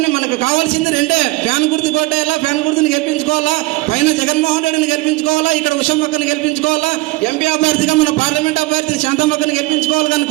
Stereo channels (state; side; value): quieter; left; 21.4 dB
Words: మనకు కావాల్సింది రెండే, ఫ్యాన్ గుర్తు కొట్టేయాలా, ఫ్యాన్ గుర్తుని గెలిపించుకోవాలా, పైన జగన్మోహన్ రెడ్డిని గెలిపించుకోవాలా, ఇక్కడ ఉషమ్మక్కని గెలిపించుకోవాలా, ఎంపీ అభ్యర్థిగా మన పార్లమెంట్ అభ్యర్థి శాంతమ్మక్కని గెలిపించుకోవాలి కానీ